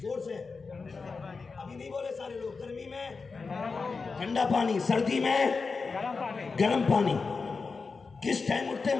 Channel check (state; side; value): quieter; right; 4.5 dB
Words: سے، ابھی نہیں بولے سارے لوگ. گرمی میں ٹھنڈا پانی، سردی میں گرم پانی. کس ٹائم اٹھتے ہیں